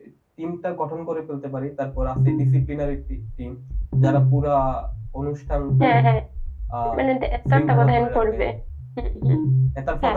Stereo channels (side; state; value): both; identical; correlation 1.00